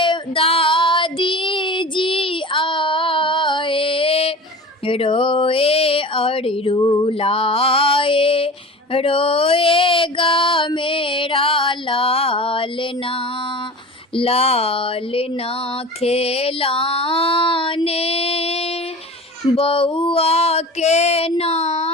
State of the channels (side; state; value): both; normal; correlation 0.35